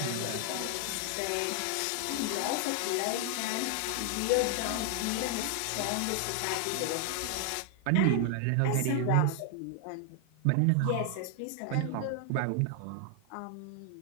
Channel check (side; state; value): both; different; correlation 0.00